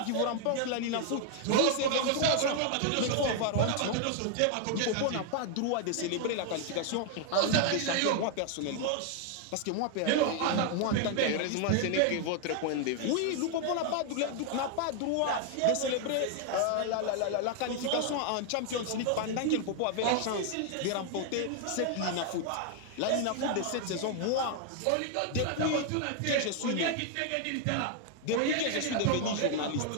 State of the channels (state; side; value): different; both; correlation 0.00